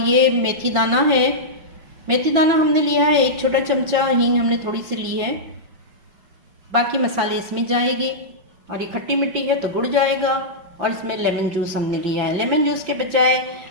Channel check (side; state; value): left; late; 5.9 ms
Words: मेथी दाना है। मेथी दाना हमने लिया है 1 छोटा चमचा, हींग हमने थोड़ी सी ली है। बाकी मसाले इसमें जाएंगे और ये खट्टी मिट्टी है तो गुड़ जाएगा। और इसमें लेमन जूस हमने लिया है। लेमन जूस के बजाय